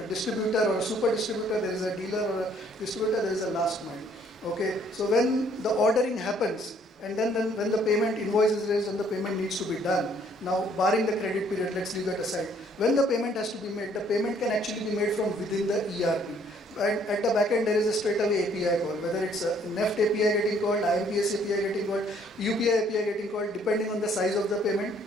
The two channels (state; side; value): normal; both; correlation 0.63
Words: distributor or a super distributor, there is a dealer or a distributor, there is a last mile. Okay, so when the ordering happens, and then when the payment invoice is raised and the payment needs to be done, now barring the credit period, let's leave that aside. When the payment has to be made, the payment can actually be made from within the ERP. And at the back end, there is a straight away API call, whether it's a NEFT API getting called, IBSA API getting called, UPI API getting called, depending on the size of the payment